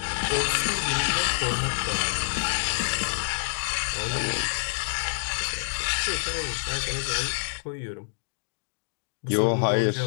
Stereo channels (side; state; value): right; silent; digital silence